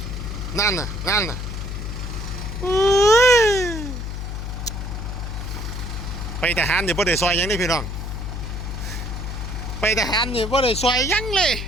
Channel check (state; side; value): noise; left; hum, 5 dB below the sound